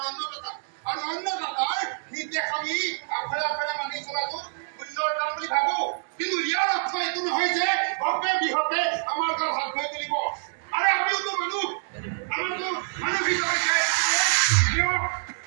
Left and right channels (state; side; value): silent; left; digital silence